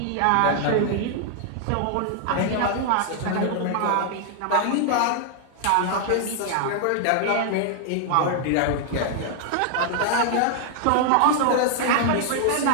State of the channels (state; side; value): different; both; correlation 0.00